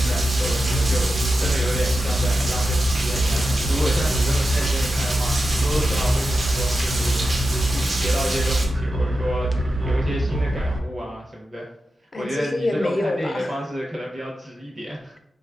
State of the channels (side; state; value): both; normal; correlation 0.91